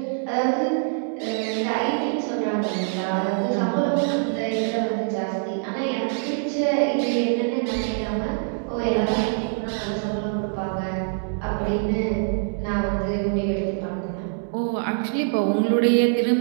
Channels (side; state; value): left; silent; 62 dB below the other